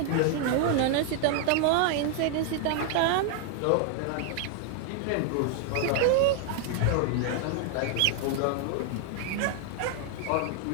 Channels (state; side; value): different; both; correlation 0.00